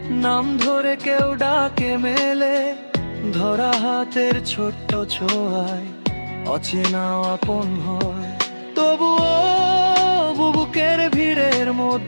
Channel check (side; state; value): both; inverted; correlation -1.00